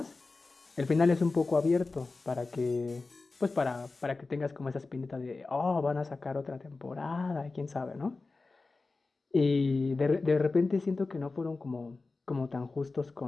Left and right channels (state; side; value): quieter; right; 3.7 dB